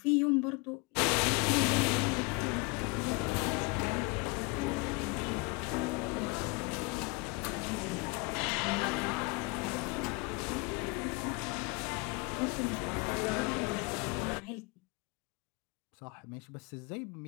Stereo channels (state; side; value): quieter; right; 28.9 dB